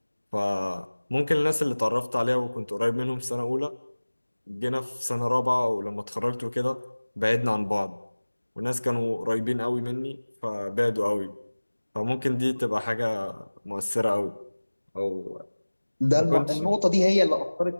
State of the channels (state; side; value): inverted; both; correlation -1.00